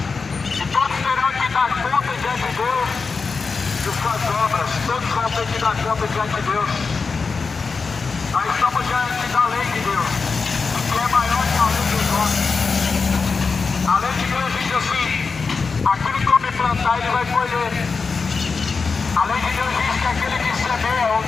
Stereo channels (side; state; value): right; quieter; 4.7 dB